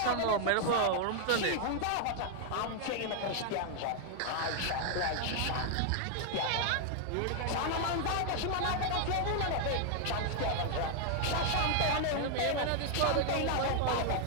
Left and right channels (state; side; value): different; both; correlation 0.00